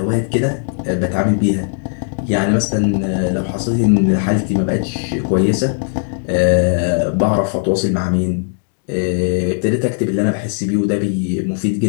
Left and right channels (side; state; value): right; silent; digital silence